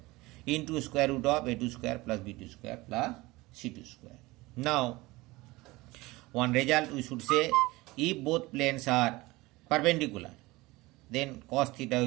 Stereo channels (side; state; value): left; quieter; 21.1 dB